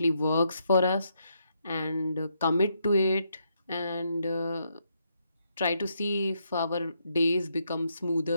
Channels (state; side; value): inverted; both; correlation -0.78